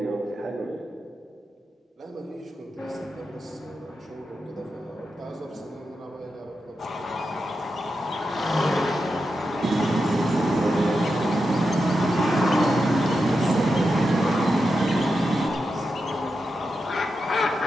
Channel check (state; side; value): normal; both; correlation 0.88